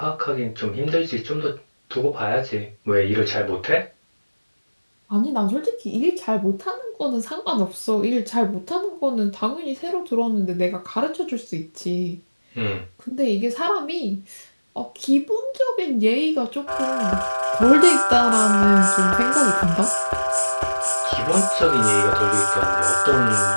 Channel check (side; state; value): both; inverted; correlation -1.00